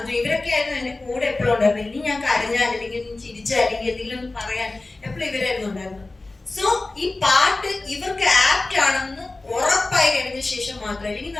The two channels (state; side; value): quieter; right; 3.2 dB